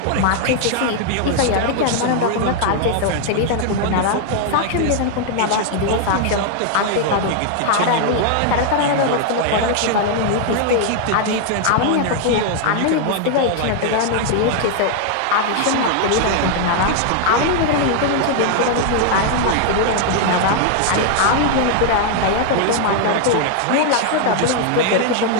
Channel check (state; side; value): different; both; correlation 0.00